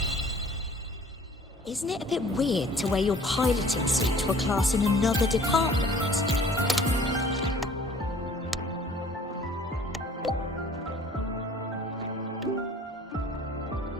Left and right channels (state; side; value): normal; both; correlation 0.52